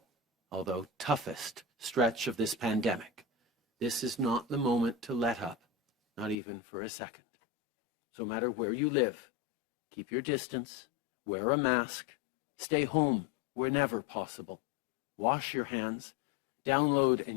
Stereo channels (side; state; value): right; drops out; at 6.4 s